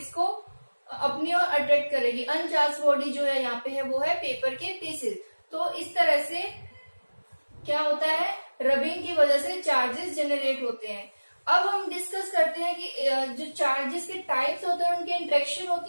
को अपनी ओर अट्रैक्ट करेगी। अनचार्ज बॉडी जो है यहाँ पे है वो है पेपर के पीसेस। तो इस तरह से क्या होता है? रबिंग की वजह से चार्जेस जनरेट होते हैं। अब हम डिस्कस करते हैं कि जो चार्जेस के टाइप्स होते हैं, उनकी इंटरेक्शन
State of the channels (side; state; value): both; inverted; correlation -1.00